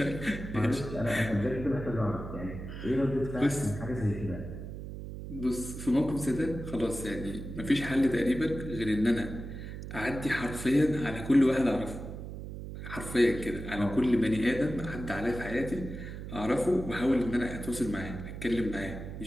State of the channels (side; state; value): right; noise; hum, 9 dB below the sound